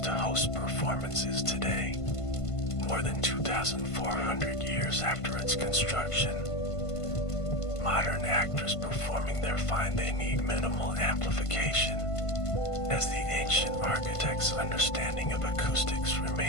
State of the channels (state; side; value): late; right; 1.5 ms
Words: to host performances today, more than 2,400 years after its construction. Modern actors performing there find they need minimal amplification, as the ancient architect's understanding of acoustics